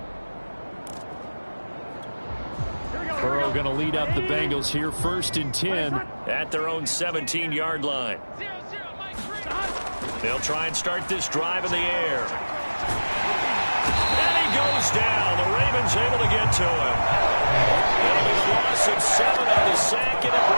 Burrow going to lead up the Bengals here, 1st and 10 at their own 17-yard line. They'll try and start this drive in the air. And he goes down. The Ravens able to get to him. That'll be the loss of 7 on the sack, and it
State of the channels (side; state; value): both; inverted; correlation -1.00